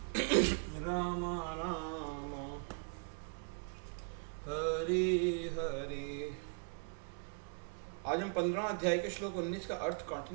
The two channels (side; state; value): left; silent; 52 dB below the other